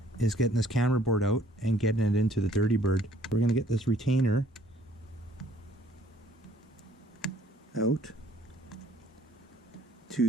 is getting this camera board out and getting it into the Dirty Bird. We're going to get this retainer out.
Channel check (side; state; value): both; normal; correlation 0.60